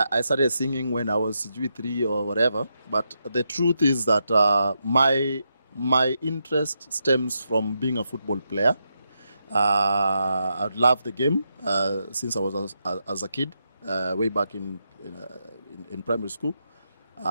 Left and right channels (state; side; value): inverted; both; correlation -0.84